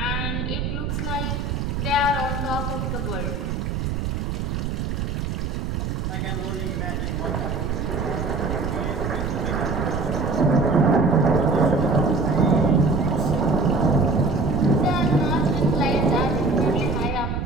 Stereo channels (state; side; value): noise; right; rumble, 2 dB below the sound